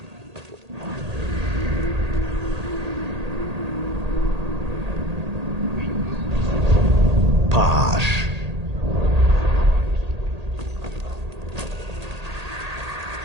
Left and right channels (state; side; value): late; left; 1.8 ms